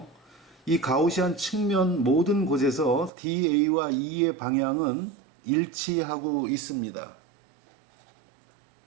이 가우시안 측면 모든 곳에서 DA와 E의 방향은 일치하고 있습니다.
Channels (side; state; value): left; drops out; at 3.1 s